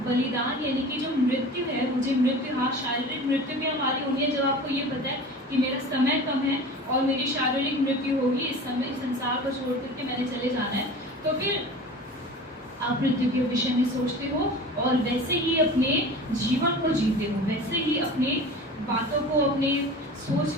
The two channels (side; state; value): both; normal; correlation 0.37